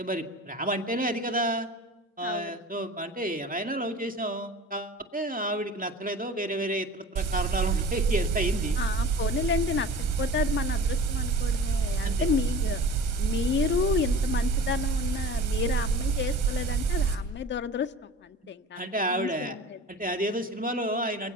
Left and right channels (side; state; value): both; normal; correlation 0.39